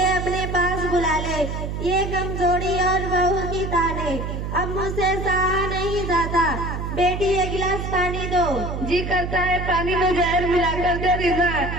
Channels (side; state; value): right; noise; hum, 4 dB below the sound